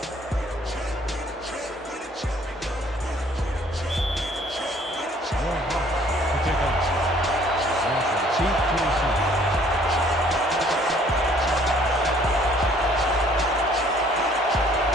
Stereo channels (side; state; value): both; normal; correlation 0.59